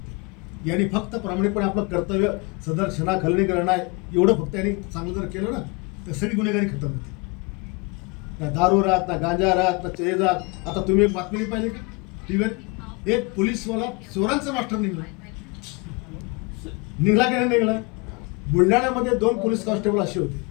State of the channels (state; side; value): quieter; right; 29.0 dB